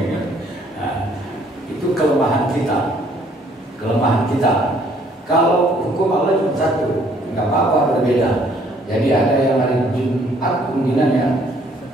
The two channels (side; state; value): both; normal; correlation 0.63